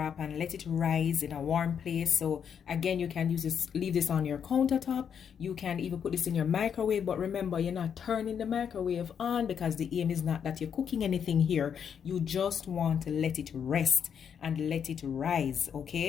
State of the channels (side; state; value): right; quieter; 7.7 dB